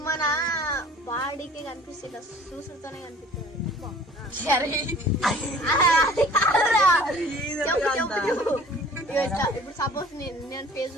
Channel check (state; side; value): normal; both; correlation 0.49